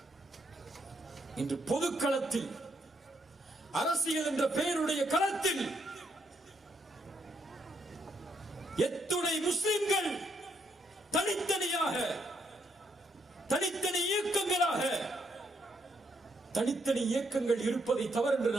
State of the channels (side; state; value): both; normal; correlation 0.76